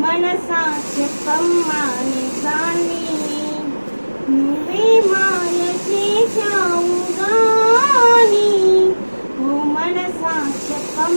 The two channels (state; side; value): inverted; both; correlation -1.00